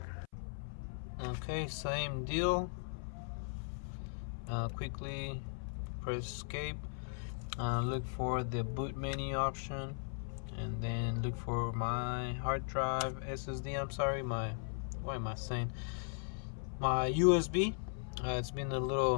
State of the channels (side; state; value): right; silent; 52 dB below the other